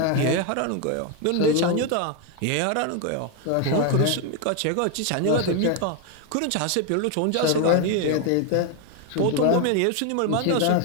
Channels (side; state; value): both; different; correlation 0.01